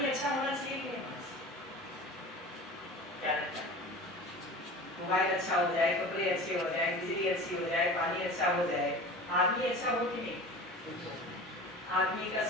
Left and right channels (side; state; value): both; normal; correlation 0.36